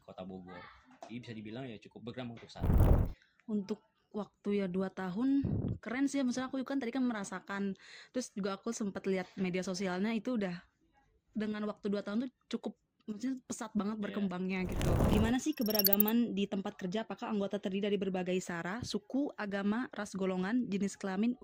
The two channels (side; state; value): both; identical; correlation 1.00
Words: Bogor. Jadi bisa dibilang ya cukup berkembang untuk saat ini. Untuk waktu ya 2 tahun keren sih. Maksudnya aku kan tadi kan merasakan, terus juga aku sempat lihat media sosialnya itu udah dengan waktu 2 tahun tuh cukup, maksudnya pesat banget berkembangnya gitu. Gimana sih keberagaman di tempat kerja? Apakah anggota terdiri dari berbagai sara, suku, agama, ras, golongan, jenis kelamin,